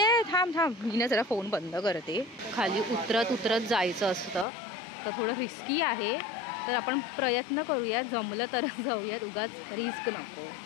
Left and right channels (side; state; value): right; drops out; at 4.5 s